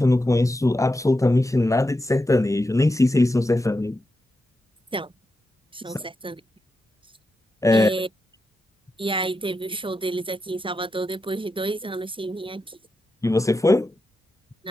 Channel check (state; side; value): normal; both; correlation 0.88